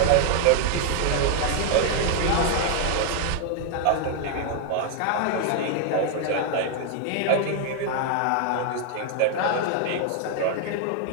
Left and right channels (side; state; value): both; different; correlation 0.00